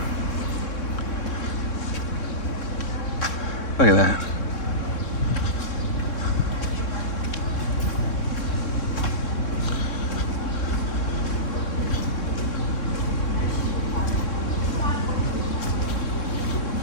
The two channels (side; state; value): right; late; 3.6 ms